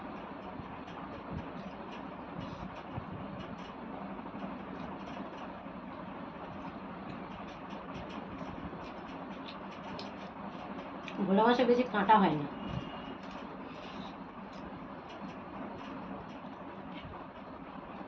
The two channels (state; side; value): identical; both; correlation 1.00